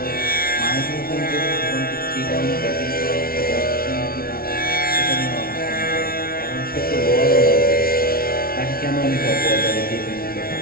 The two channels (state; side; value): late; right; 0.44 ms